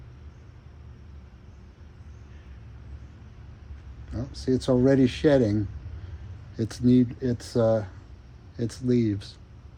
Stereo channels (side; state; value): both; identical; correlation 1.00